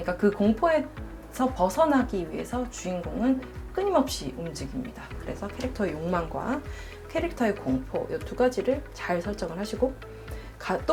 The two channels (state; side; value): identical; both; correlation 1.00